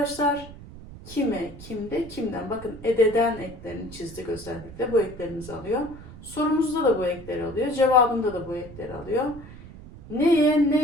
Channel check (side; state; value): right; noise; rumble, 16 dB below the sound